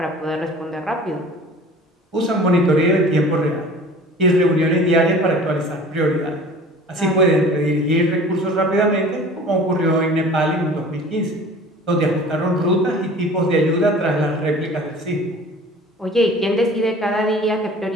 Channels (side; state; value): both; normal; correlation 0.44